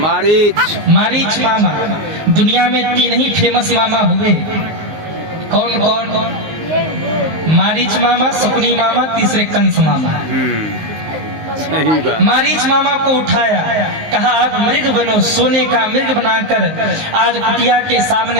मामा। दुनिया में 3 ही फेमस मामा हुए। कौन कौन? मारीच मामा, शकुनी मामा, तीसरे कंस मामा। मारीच मामा को उठाया, कहा आप मृग बनो। सोने का मृग बनाकर आज कुटिया के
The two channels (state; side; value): late; left; 19 ms